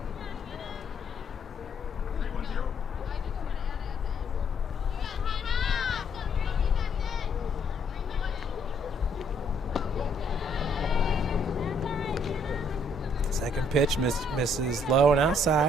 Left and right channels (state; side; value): normal; both; correlation 0.67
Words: Second pitch misses low and